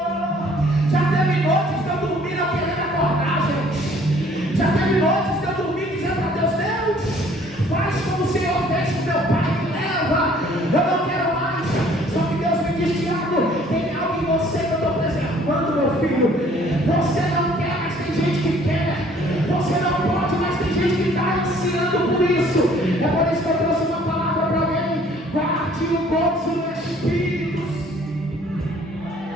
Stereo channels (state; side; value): normal; both; correlation 0.57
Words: Já teve noites de eu dormir não querendo acordar, gente. Já teve noites de eu dormir dizendo para Deus: Deus, faz como o Senhor fez com meu pai, me leva, eu não quero mais. Só que Deus me diz: Tiago, tem algo em você que eu estou preservando, meu filho. Você não quer, mas tem gente que quer. Você não pode, mas tem gente que está ansiando por isso. É por isso que eu trouxe uma palavra para alguém: guarde o gozo no Espírito.